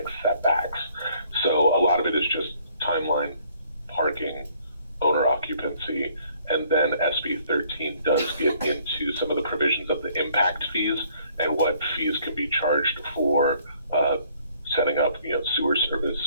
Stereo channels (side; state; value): both; inverted; correlation -0.62